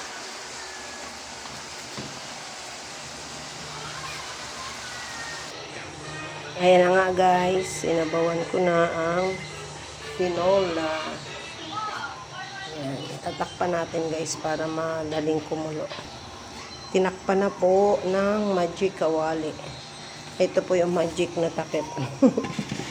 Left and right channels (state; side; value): identical; both; correlation 1.00